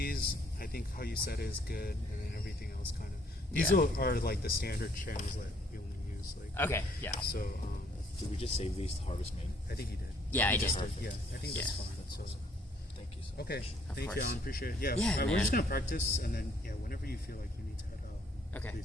I think how you said is good, and then everything else kind of these Yeah. are like the standard channels that we only use. Like Okay. Yeah. so, Did we just save these to Harvest Main? I think you did. Yeah, I did. Yeah, I think that's Yeah. fine. So Thank you so much. okay, Of thank course. you, Alan. Appreciate it. Yeah, Yeah, we're man. just gonna practice, and then whenever you feel like you need to head out, Okay.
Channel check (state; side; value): normal; both; correlation 0.65